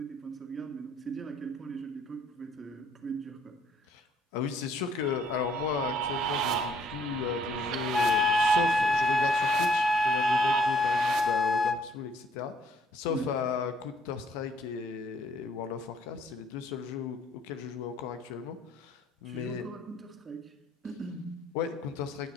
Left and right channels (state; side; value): normal; both; correlation 0.64